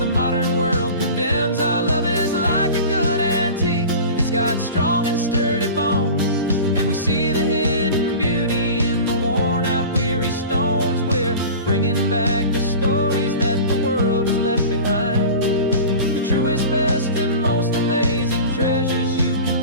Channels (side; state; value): both; inverted; correlation -0.35